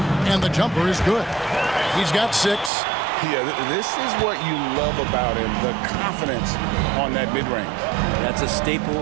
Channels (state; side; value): drops out; left; at 2.7 s